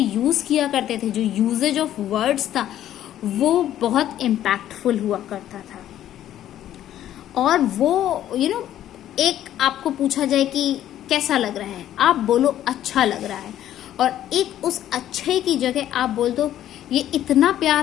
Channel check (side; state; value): right; quieter; 11.9 dB